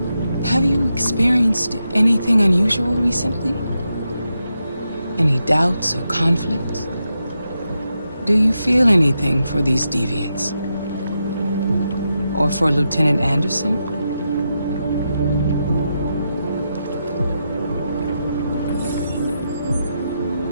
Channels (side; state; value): both; inverted; correlation -0.86